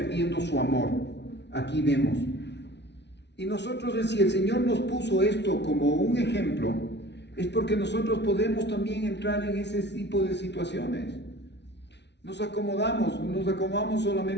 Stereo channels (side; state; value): right; late; 0.50 ms